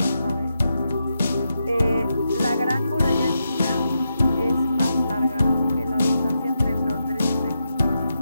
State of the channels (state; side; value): inverted; both; correlation -0.85